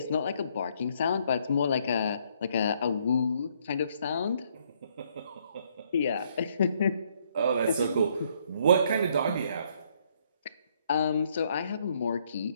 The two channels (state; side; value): inverted; both; correlation -0.69